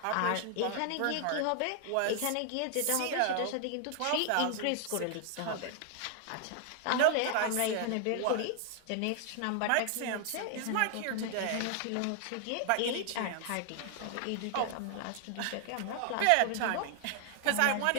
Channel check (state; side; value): different; both; correlation 0.00